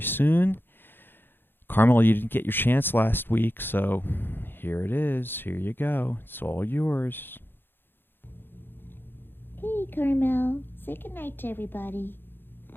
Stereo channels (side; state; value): right; late; 0.10 ms